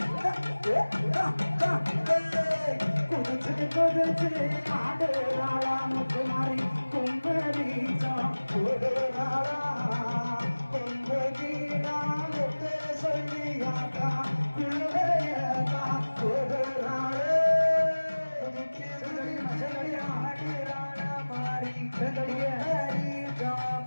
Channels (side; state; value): both; inverted; correlation -1.00